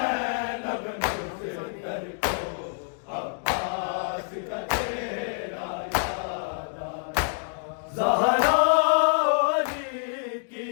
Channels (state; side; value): silent; right; digital silence